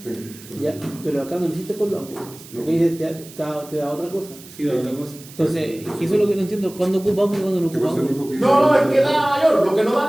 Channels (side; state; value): right; noise; hiss, 19 dB below the sound